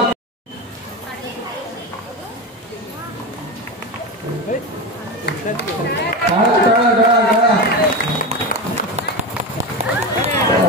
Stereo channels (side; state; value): both; normal; correlation 0.20